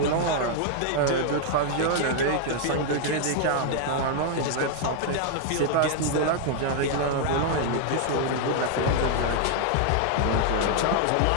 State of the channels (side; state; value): both; different; correlation 0.00